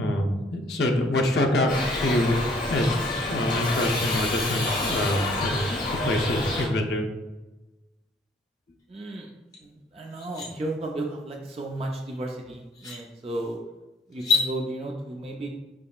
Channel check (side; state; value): both; normal; correlation 0.60